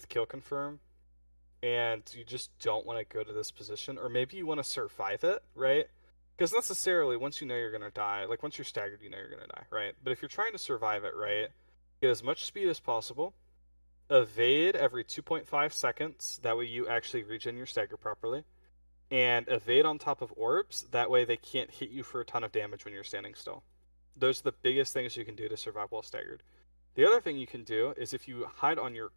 kill confirm, and you just don't want to go to this position, or maybe you want to survive it, right? Because necessarily, once you know you're going to die, like once you're staggered, you know you're going to die, right? But if you're trying to survive it, right, get as much speed as possible, evade every 2.5 seconds, that way you actually regen your stagger properly, and evade on top of orbs, that way they can't hit you for a ton of damage when you're standing still. Those are the biggest things you can do to survive while staggered. The other thing you can do is if you hide on your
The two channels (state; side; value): inverted; both; correlation -1.00